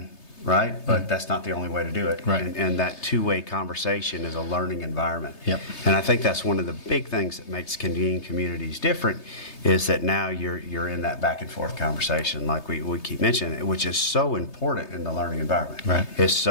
right? But that's not the only way to do it. Right. And that two-way conversation is a learning environment. Yep. And I think that's one of the big things that makes Convene communities different, is that now you're in that back and forth conversation, like we keep mentioning, which is so important in the learning environment. Right. It's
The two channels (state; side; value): late; right; 3.3 ms